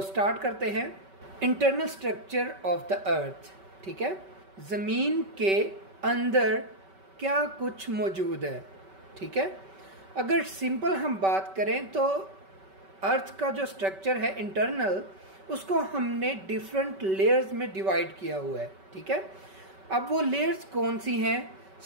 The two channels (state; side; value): late; left; 5.2 ms